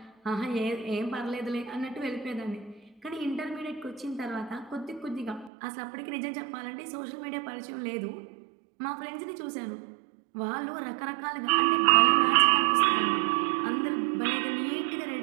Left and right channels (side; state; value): left; drops out; at 5.5 s